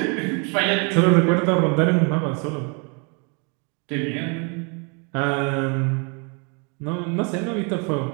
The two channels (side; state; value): left; quieter; 34.4 dB